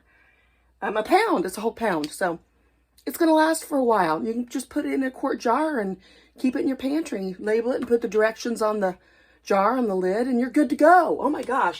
A pound. It's a whole pound. So, it's going to last for a while. You can just put it in a quart jar and keep it in your pantry. Label it and put the directions on the jar on the lid, and you're good to go. Oh my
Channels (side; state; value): both; identical; correlation 1.00